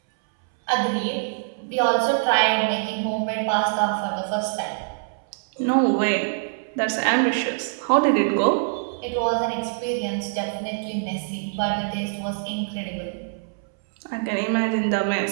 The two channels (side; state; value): left; silent; 63 dB below the other